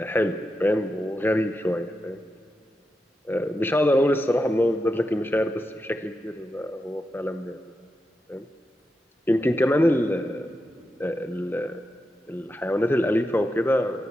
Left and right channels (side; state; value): both; normal; correlation 0.88